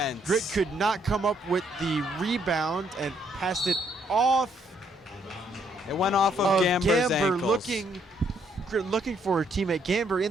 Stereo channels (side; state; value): both; normal; correlation 0.71